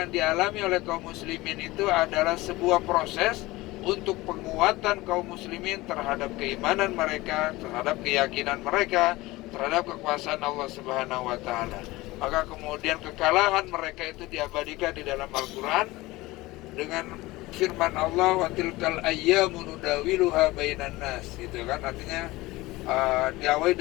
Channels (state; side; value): quieter; right; 19.9 dB